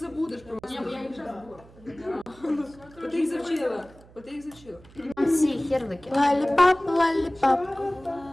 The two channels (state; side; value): noise; right; hum, 23 dB below the sound